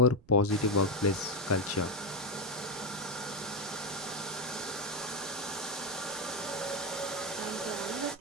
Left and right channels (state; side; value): noise; right; rumble, 27 dB below the sound